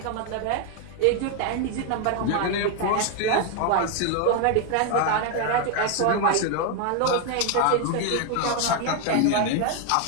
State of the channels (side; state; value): both; different; correlation 0.01